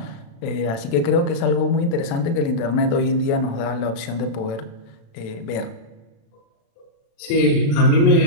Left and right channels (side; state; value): right; late; 36 ms